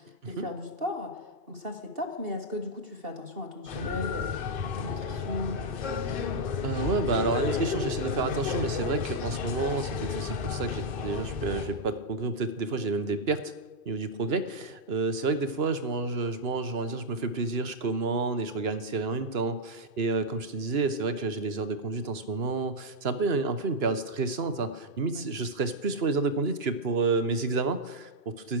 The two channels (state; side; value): late; left; 2.9 ms